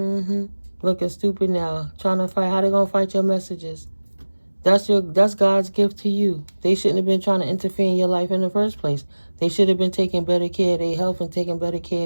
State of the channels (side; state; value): both; inverted; correlation -1.00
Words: stupid now. Trying to fight. How they going to fight your messages? That's God's gift to you. They shouldn't have been trying to interfere in your life in the first place. They should have been taking better care of their health and taking better care